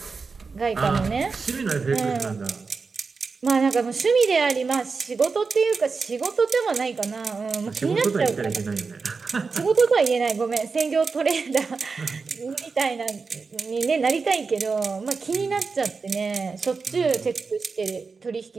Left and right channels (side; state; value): left; quieter; 4.7 dB